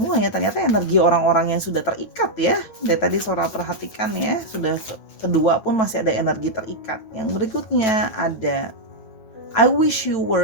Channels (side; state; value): right; late; 9.6 ms